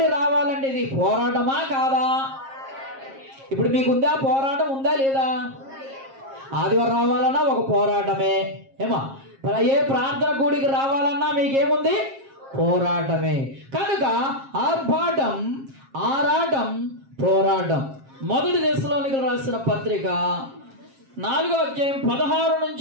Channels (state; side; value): late; left; 7.4 ms